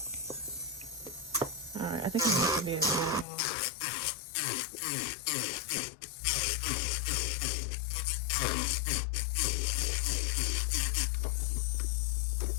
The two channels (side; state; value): right; drops out; at 3.2 s